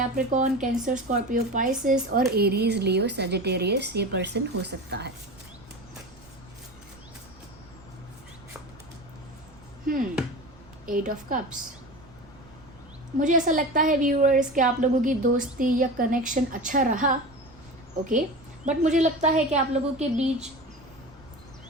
कैंसर, स्कॉर्पियो, पाइसेस और एरीज, लियो, सजिटेरियस ये पर्सन हो सकता है। 8 ऑफ कप्स। मुझे ऐसा लगता है व्यूअर्स कि आप लोगों की दोस्ती या कनेक्शन अच्छा रहा, ओके, बट मुझे लगता है कि आप लोगों के बीच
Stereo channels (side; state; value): right; noise; rumble, 24 dB below the sound